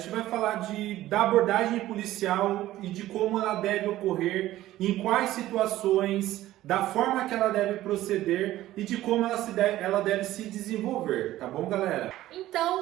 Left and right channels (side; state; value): left; quieter; 14.9 dB